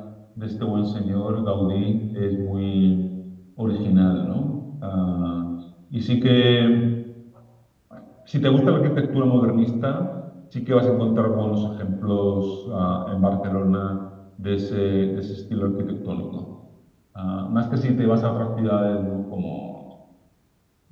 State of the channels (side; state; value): both; identical; correlation 1.00